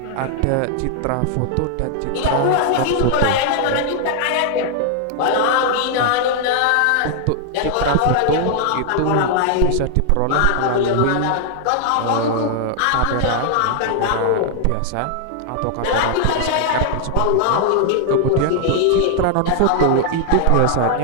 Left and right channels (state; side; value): different; both; correlation 0.00